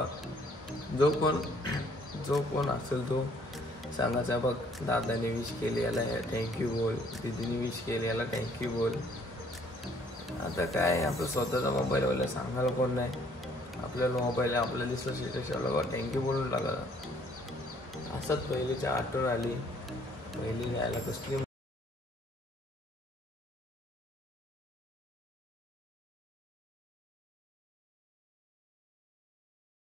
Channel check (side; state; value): both; normal; correlation 0.62